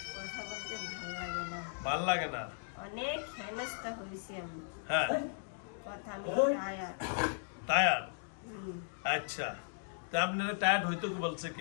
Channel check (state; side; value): silent; right; digital silence